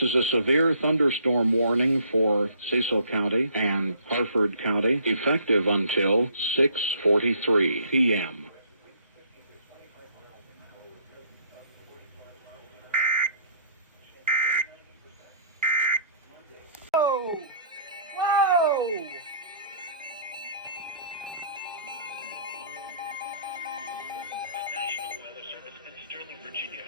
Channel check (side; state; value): both; inverted; correlation -0.58